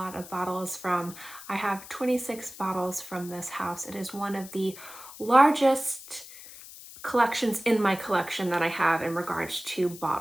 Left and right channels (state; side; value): noise; left; hiss, 16 dB below the sound